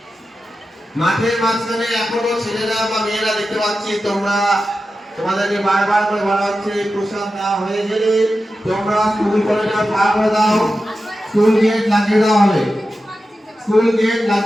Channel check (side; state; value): both; normal; correlation 0.92